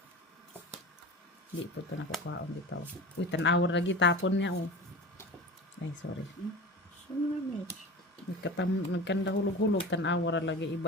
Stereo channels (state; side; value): normal; both; correlation 0.33